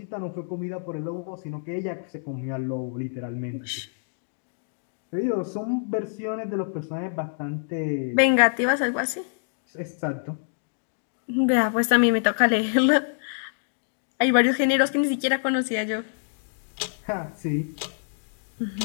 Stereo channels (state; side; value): silent; right; digital silence